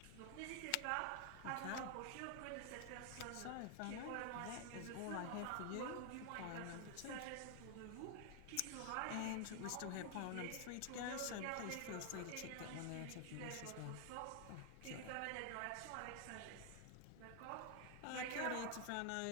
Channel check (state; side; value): different; both; correlation 0.00